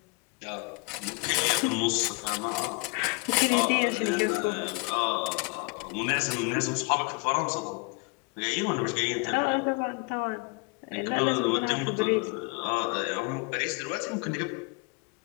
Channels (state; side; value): quieter; right; 29.4 dB